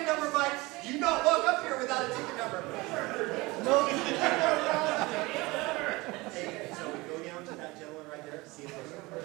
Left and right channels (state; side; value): quieter; left; 22.7 dB